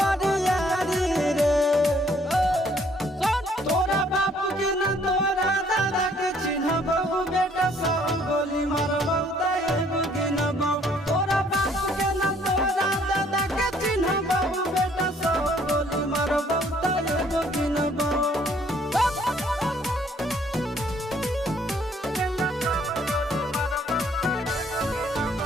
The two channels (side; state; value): both; normal; correlation 0.62